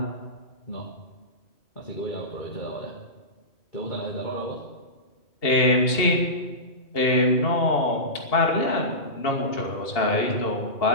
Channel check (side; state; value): right; late; 2.8 ms